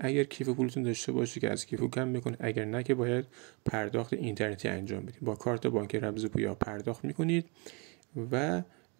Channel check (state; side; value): quieter; left; 31.4 dB